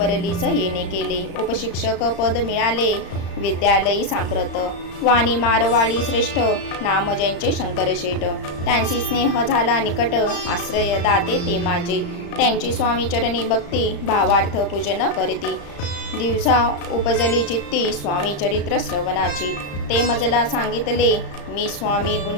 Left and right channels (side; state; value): right; late; 35 ms